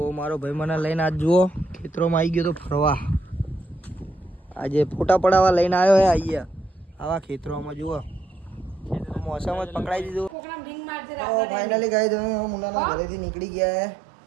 મારો ભાઈ મને લઈને આજ જુઓ ખેતરોમાં આવી ગયો તો ફરવા. આજે ફોટા પડાવવા લઈને આવ્યો હે. અહીંયા આવા ખેતરોમાં જુઓ મોસમ જ પકડાઈ દીધું. તો ફાઇનલી ગાઈસ અમે મુન્નાના ઘરેથી નીકળી ગયા હે.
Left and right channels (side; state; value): left; drops out; at 10.4 s